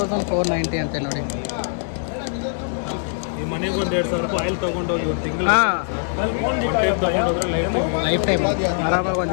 ಅಂತೆ ನೋಡಿ. ಮನೆಗೆ ಒಂದು 2,000 ರೂಪಾಯಿ ಆಯಿಲ್ ತೊಗೊಂಡೋಗಿ ಒಂದು ತಿಂಗಳು ಲೈಫ್ ಟೈಮ್ ಆರಾಮಾಗಿ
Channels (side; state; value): right; silent; 64 dB below the other